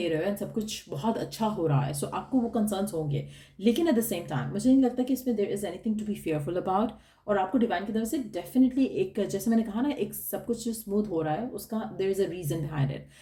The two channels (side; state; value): both; identical; correlation 1.00